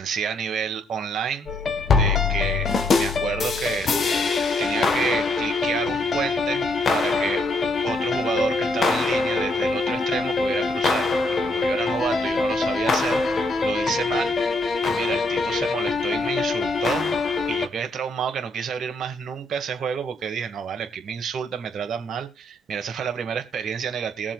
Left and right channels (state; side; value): normal; both; correlation 0.73